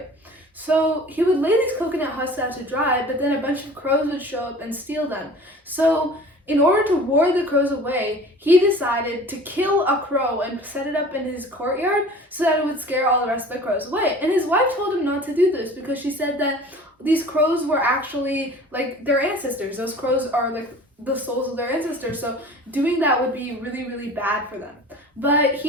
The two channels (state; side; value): normal; both; correlation 0.43